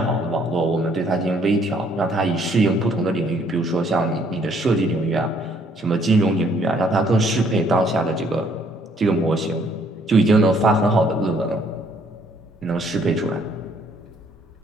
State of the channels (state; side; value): normal; both; correlation 0.65